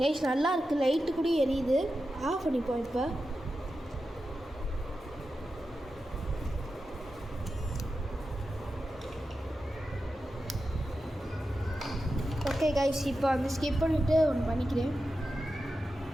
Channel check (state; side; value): normal; both; correlation 0.91